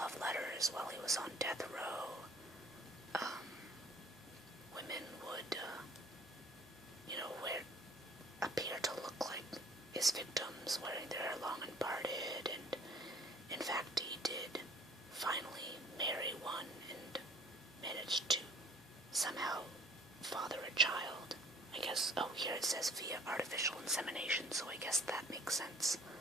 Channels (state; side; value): normal; both; correlation 0.52